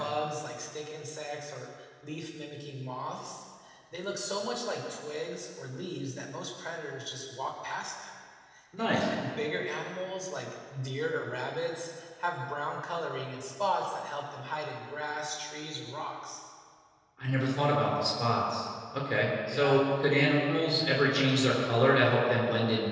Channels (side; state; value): both; identical; correlation 1.00